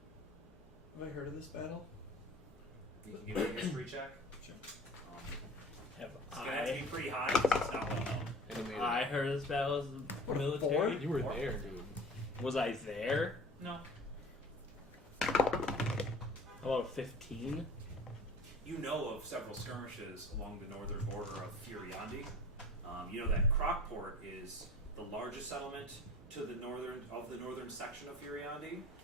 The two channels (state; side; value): normal; both; correlation 0.43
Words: Have I heard of this battle? You can give me a history check. Sure. Have It's gonna have to I? be pretty high because it's not well known. Animated. I heard this battle as a military. You were there, dude. Was I there? No. How about 15? You know of several skirmishes along the northern border of Furiandi. You know that Crockport is the largest settlement to the northern section of Furiandi,